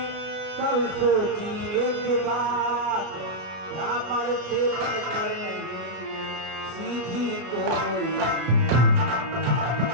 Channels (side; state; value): left; late; 33 ms